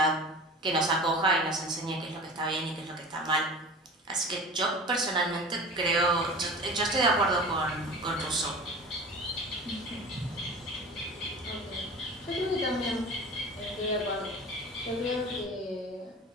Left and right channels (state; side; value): normal; both; correlation 0.37